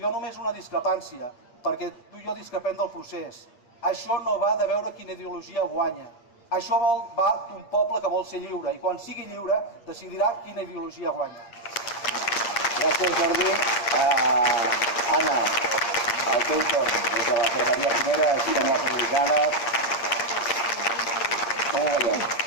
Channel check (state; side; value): late; right; 8.6 ms